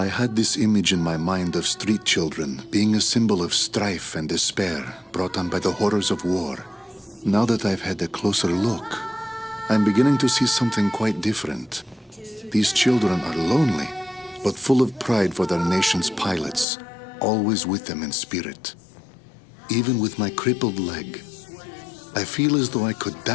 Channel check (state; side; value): drops out; right; at 16.7 s